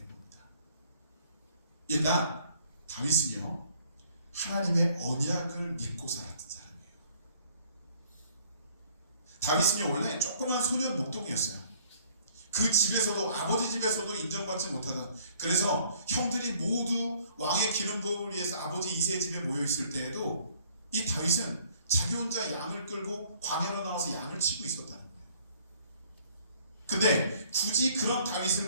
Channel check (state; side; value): inverted; both; correlation -0.60